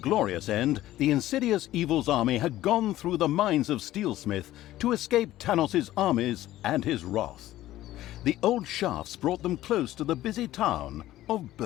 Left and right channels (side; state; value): right; quieter; 14.7 dB